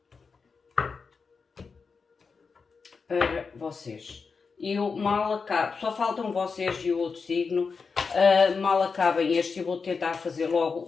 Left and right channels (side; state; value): right; quieter; 5.0 dB